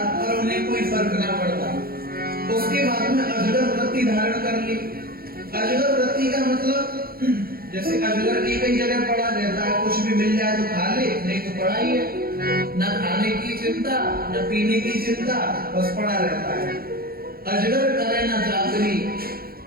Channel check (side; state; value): left; late; 0.44 ms